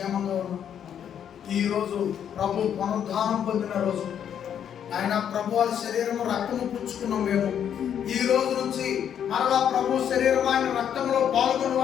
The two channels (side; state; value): right; quieter; 9.0 dB